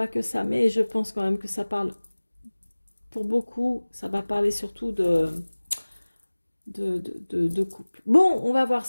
que ça, mais je pense quand même que ça parle, pour beaucoup, ça va parler surtout de couple. Bon, on va voir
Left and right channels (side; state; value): both; inverted; correlation -1.00